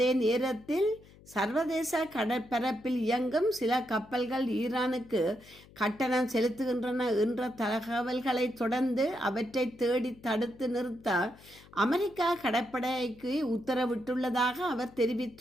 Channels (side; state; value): left; noise; hum, 23 dB below the sound